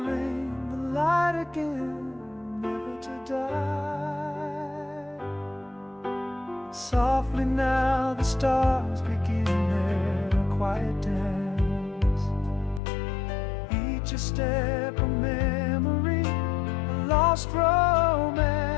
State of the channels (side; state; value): right; drops out; at 12.8 s